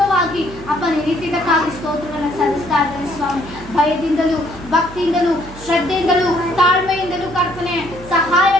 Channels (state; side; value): noise; right; hum, 17 dB below the sound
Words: ಅಪ್ಪ ನೀತಿದ್ದಕ್ಕಾಗಿ ಸ್ತೋತ್ರವನ್ನು ಸಲ್ಲಿಸ್ತಾ ಇದ್ದೇನೆ ಸ್ವಾಮಿ. ಭಯದಿಂದಲೂ ಭಕ್ತಿಯಿಂದಲೂ ಶ್ರದ್ಧೆಯಿಂದಲೂ ತಾಳ್ಮೆಯಿಂದಲೂ ಕರ್ತನೆ ಸಹಾಯ